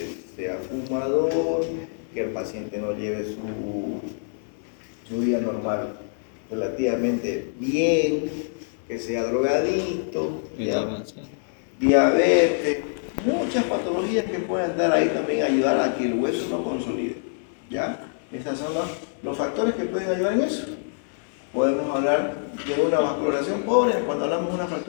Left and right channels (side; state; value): right; silent; 62 dB below the other